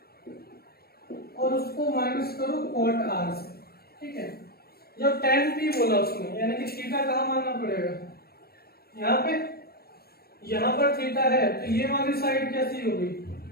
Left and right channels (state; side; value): late; right; 0.45 ms